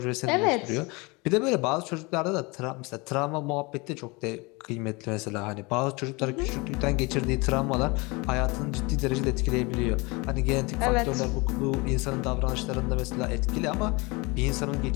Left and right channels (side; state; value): right; quieter; 26.4 dB